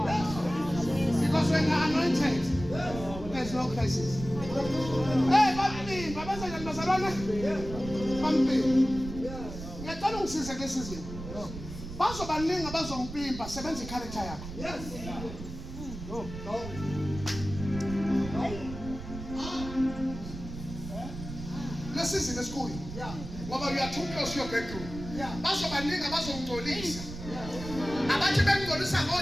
Because when you're anointed, there's no crisis. Hey, bamlimba bazalwane bazalwane. Bamlimba. Ngiyacela ungisize kulesi sizwe. Bazobaningi abazompimpa sebenza i-character yakho. Yes. No. Lesi sizwe esikhulu. Yeah. Ngoba you are too close to your bedroom. Yeah. Bazobaningi abazongcolisa. Abathi bengcolisa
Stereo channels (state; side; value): noise; right; rumble, 10 dB below the sound